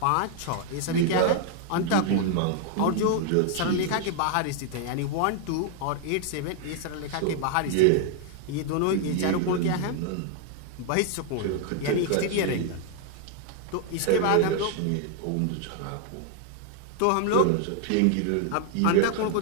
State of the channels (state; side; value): different; both; correlation 0.00